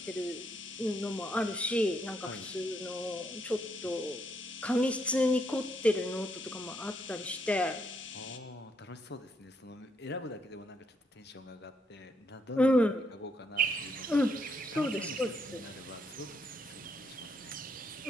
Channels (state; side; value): normal; both; correlation 0.75